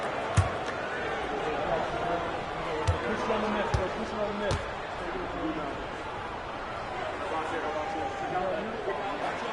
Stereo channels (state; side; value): identical; both; correlation 1.00